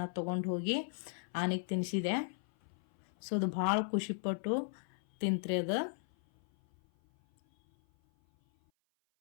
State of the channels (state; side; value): silent; right; 54 dB below the other